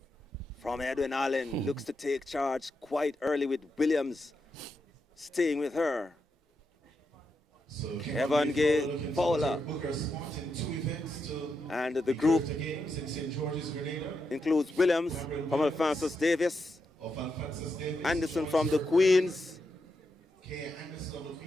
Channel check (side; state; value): both; normal; correlation 0.84